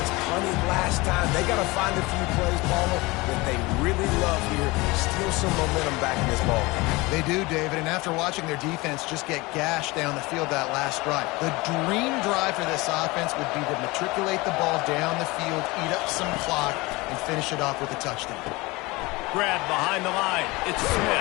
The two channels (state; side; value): quieter; right; 23.0 dB